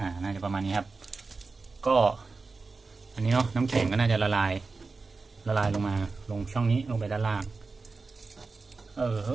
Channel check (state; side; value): quieter; left; 4.1 dB